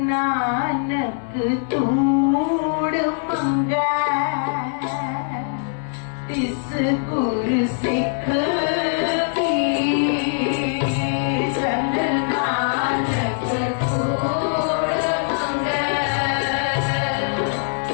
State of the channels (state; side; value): silent; right; digital silence